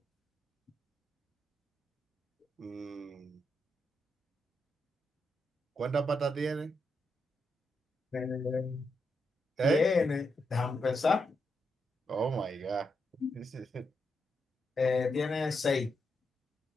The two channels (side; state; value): both; normal; correlation 0.83